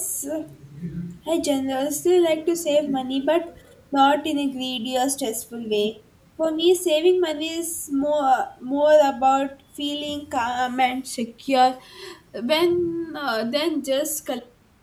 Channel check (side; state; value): both; identical; correlation 1.00